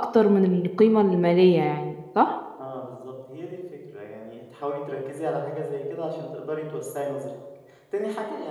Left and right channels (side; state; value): both; identical; correlation 1.00